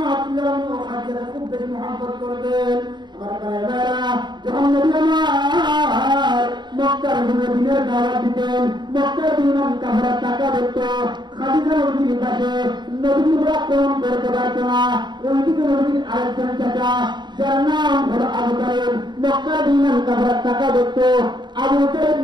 আলাইহি খাদিজাকে খুব বেশি মহব্বত করতেন। আমার ভাইরা, যখন নবী আমার মক্কার দিনের দাওয়াত দিতেন, মক্কার দিনের কাফেররা টাকা দিত, খাদিজা নবীর পাশে নবীর আক্রমণ করতে পারত না। ওইদিকে নবীর আরেকজন চাচা যার নাম হলো আবু তালিব, মক্কার দিনের কাফেররা টাকা দিত, আবু তালিব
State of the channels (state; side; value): late; left; 0.21 ms